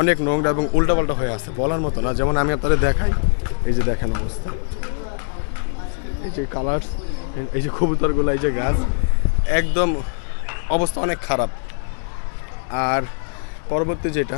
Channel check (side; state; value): right; silent; digital silence